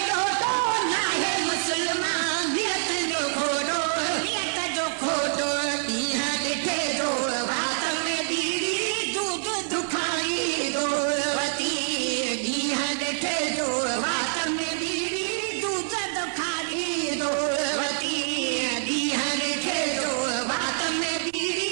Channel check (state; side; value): silent; left; 61 dB below the other